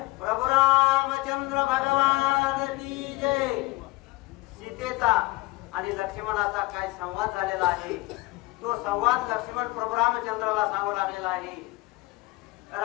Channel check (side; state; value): right; quieter; 22.0 dB